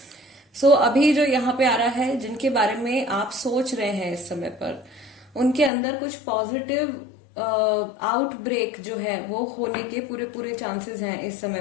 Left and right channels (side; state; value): right; drops out; at 5.7 s